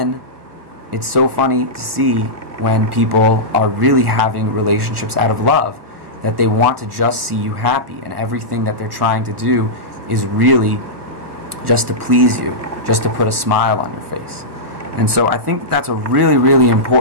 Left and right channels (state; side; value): late; left; 1.3 ms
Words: it's so funny to see when people are really having relationships out of love, that they want to just see you happy, and everything that they're trying to do is really just to please you, just to put a smile on your face. And so I think that's a really, really